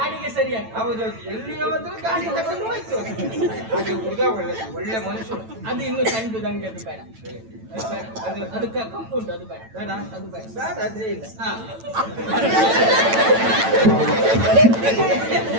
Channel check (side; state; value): left; late; 9.0 ms